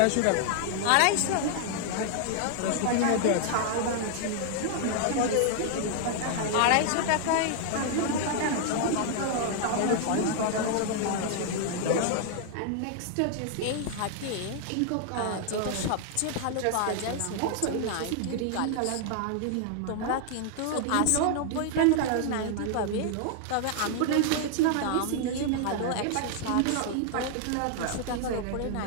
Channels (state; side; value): different; both; correlation 0.00